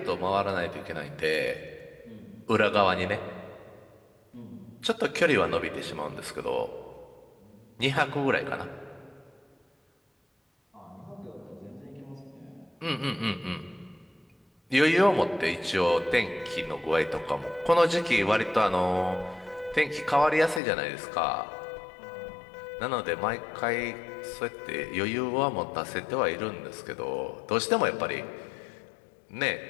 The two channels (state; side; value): drops out; right; at 20.6 s